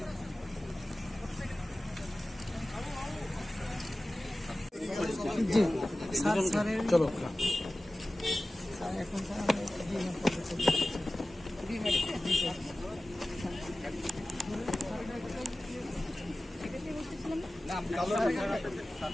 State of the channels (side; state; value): both; normal; correlation 0.96